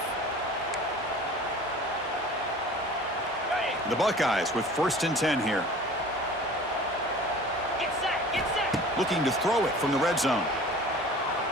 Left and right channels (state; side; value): normal; both; correlation 0.43